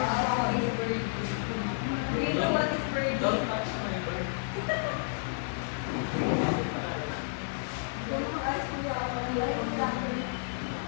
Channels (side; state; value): right; silent; 56 dB below the other